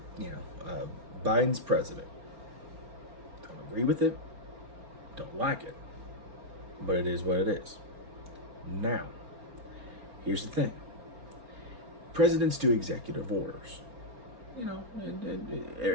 Biden's president. Don't agree with it. Don't like it, but it is what it is. Now, here's the thing: presidents do executive orders.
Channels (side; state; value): left; late; 4.3 ms